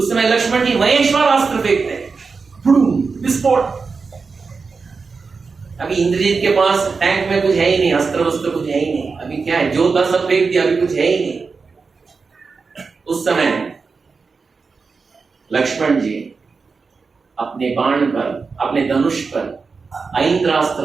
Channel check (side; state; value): left; quieter; 4.7 dB